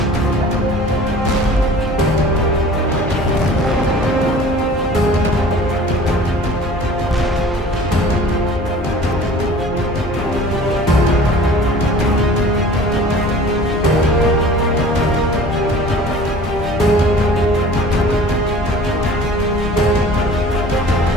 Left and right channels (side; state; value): both; normal; correlation 0.46